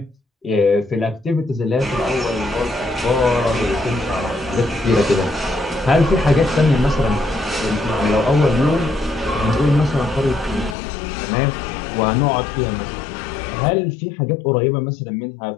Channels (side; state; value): right; drops out; at 10.8 s